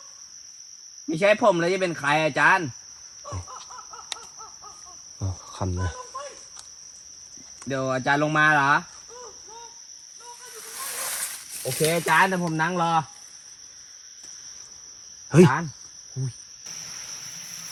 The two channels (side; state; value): both; identical; correlation 1.00